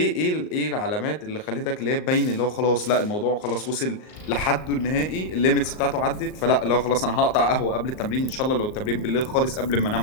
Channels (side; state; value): right; late; 38 ms